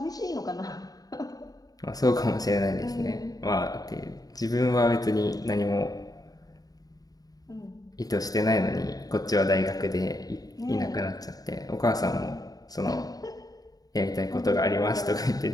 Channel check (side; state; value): right; late; 0.18 ms